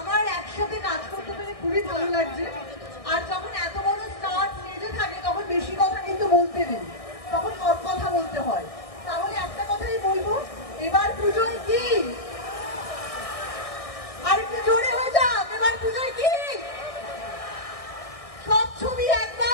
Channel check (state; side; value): late; right; 1.6 ms